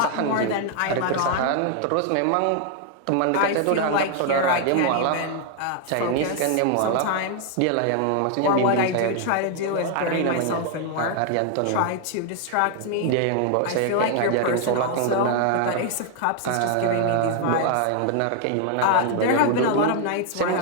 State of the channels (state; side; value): different; both; correlation 0.00